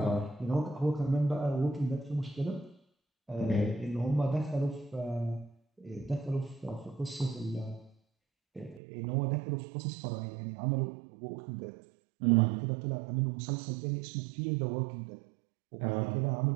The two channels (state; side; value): drops out; left; at 8.8 s